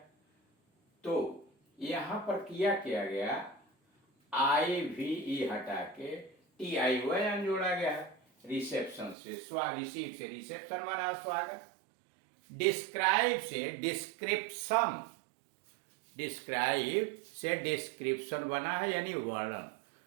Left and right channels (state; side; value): drops out; left; at 9.2 s